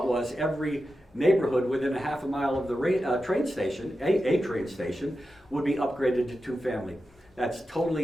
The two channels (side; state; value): both; normal; correlation 0.91